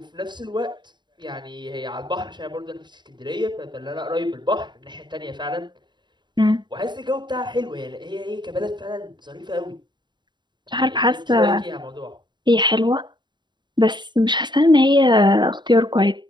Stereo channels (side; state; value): left; late; 0.22 ms